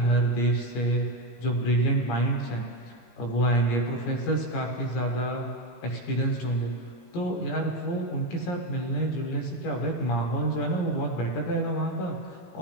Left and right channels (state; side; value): late; right; 18 ms